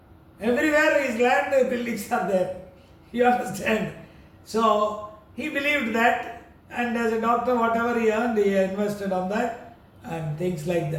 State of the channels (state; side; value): identical; both; correlation 1.00